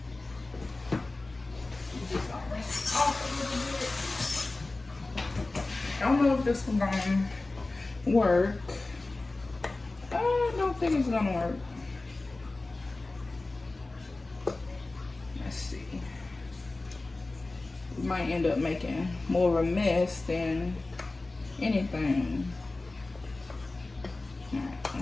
I don't know if this one's gonna work. I don't think it's gonna work. Let's see. We might end up making more of a mess than anything. Alright,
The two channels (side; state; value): right; quieter; 3.2 dB